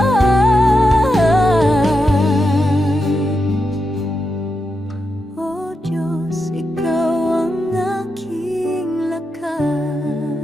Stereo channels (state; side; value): normal; both; correlation 0.86